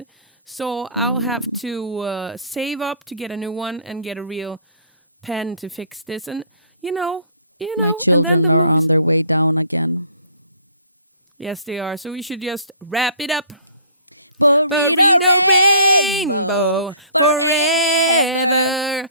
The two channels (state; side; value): inverted; both; correlation -0.52